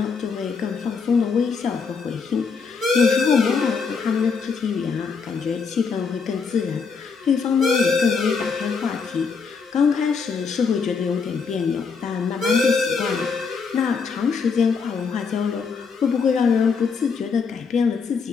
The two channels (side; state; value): right; quieter; 5.3 dB